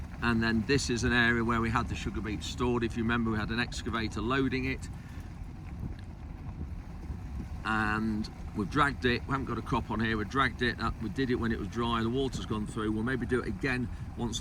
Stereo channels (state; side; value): identical; both; correlation 1.00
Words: And then this is an area where we had the sugar beet stored. If you remember, we had an excavator loading it, and we've dragged it. We haven't got a crop on here. We dragged it up. We did it when it was dry. The water's gone through. We'll maybe do it again once